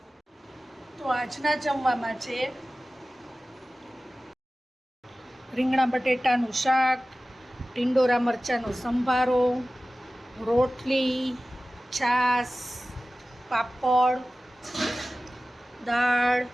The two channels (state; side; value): normal; both; correlation 0.96